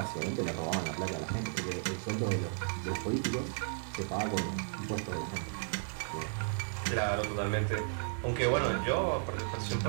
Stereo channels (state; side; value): silent; left; digital silence